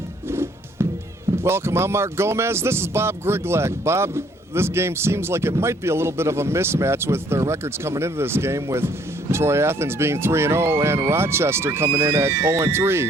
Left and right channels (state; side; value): normal; both; correlation 0.63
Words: Welcome, I'm Mark Gomez. This is Bob Griglak. Bob, this game seems like it might be a little bit of a mismatch with their records coming into this game, with Troy Athens being 3-0 and Rochester coming in at